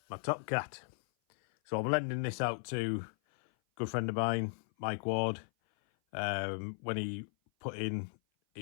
my Topcat. So I'm lending this out to a good friend of mine, Mike Ward. When he put in,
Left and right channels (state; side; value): silent; right; 54 dB below the other